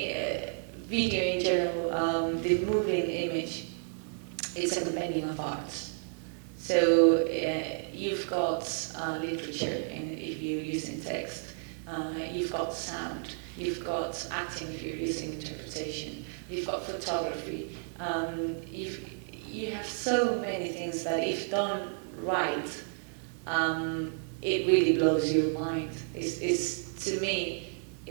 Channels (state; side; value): silent; left; 57 dB below the other